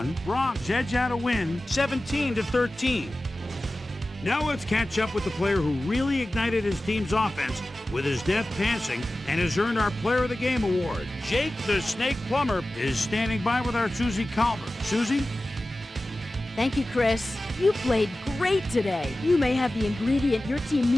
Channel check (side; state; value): both; normal; correlation 0.95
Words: Bronx edge out a win, 17-13. Now let's catch up with the player who really ignited his team's offense with his deft passing and has earned our Player of the Game award. Jake the Snake Plumber is standing by with our Susie Calvert. Susie? Thank you, Chris. You played great today. You may have the ingredient your team